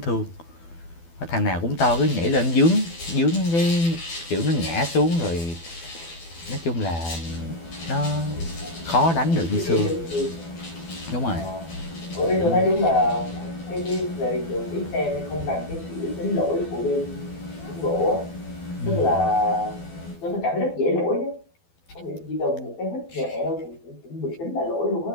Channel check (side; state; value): right; late; 12 ms